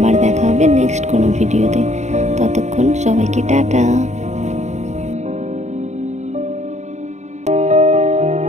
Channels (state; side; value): late; left; 0.34 ms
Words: দেখা হবে নেক্সট কোনো ভিডিওতে। ততক্ষণ সবাইকে টাটা।